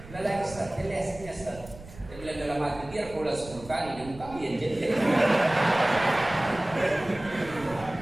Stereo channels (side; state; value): right; noise; rumble, 17 dB below the sound